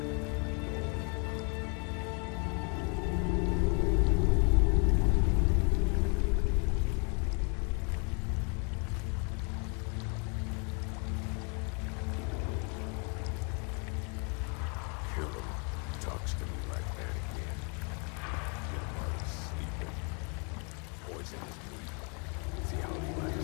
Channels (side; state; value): right; quieter; 35.4 dB